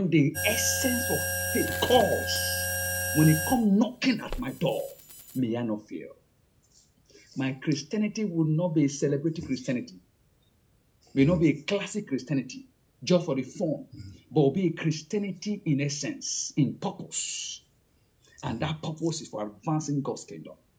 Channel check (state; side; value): identical; both; correlation 1.00